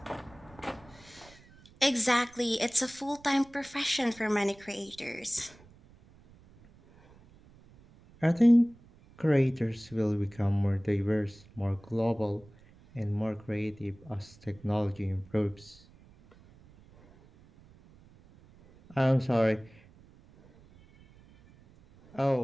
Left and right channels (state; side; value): noise; right; rumble, 25 dB below the sound